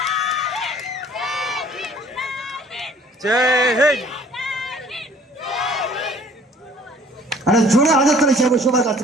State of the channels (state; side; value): normal; both; correlation 0.54